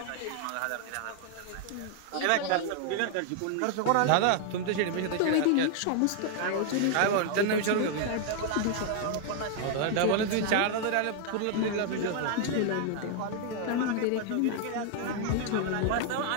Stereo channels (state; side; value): different; both; correlation 0.00